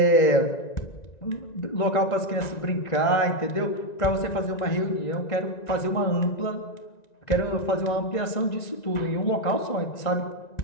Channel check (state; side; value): late; right; 1.9 ms